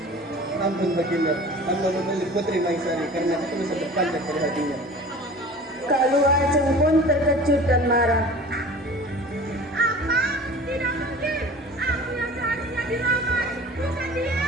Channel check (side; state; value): both; normal; correlation 0.41